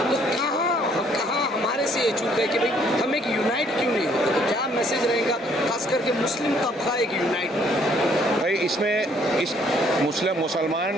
تو کہاں ہمارے سے یہ چوک ہے کہ بھائی ہم ایک یونائٹ کیوں نہیں ہوتے؟ تو کیا میسج رہے گا خاص کر کے مسلم طبقہ ایک یونائٹ ہو؟ بھائی اس میں اس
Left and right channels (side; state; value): both; normal; correlation 0.64